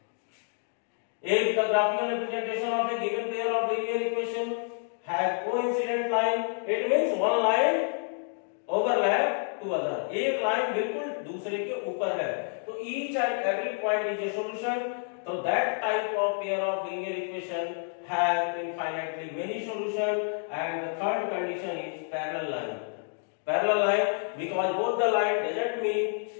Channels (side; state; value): right; silent; 56 dB below the other